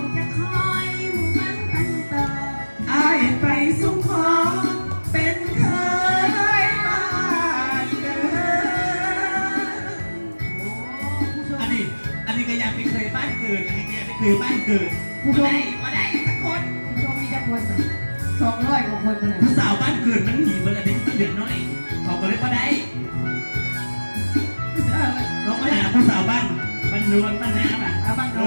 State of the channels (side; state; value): both; inverted; correlation -1.00